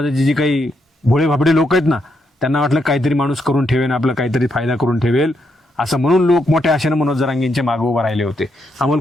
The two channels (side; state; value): both; normal; correlation 0.79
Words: जी काही भोळे भाबडे लोक आहेत ना, त्यांना वाटलं काहीतरी माणूस करून ठेवेल, आपला काहीतरी फायदा करून ठेवेल, असं म्हणून लोक मोठ्या आशेनं मनोज जरांगेंच्या मागे उभे राहिले होते. अमोल